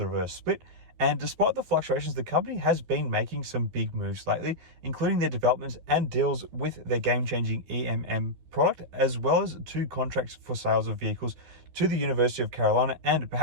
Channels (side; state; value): left; late; 13 ms